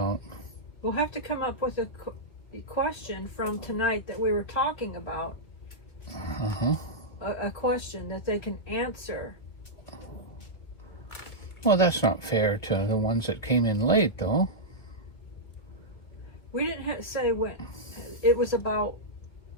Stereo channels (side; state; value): right; late; 2.5 ms